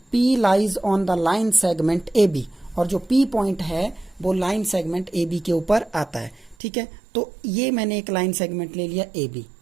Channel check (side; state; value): left; drops out; at 6.6 s